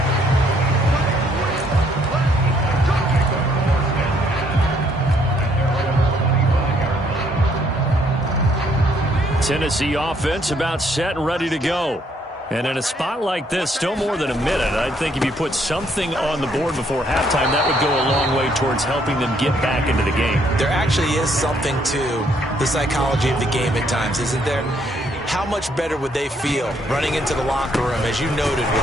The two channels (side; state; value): both; normal; correlation 0.68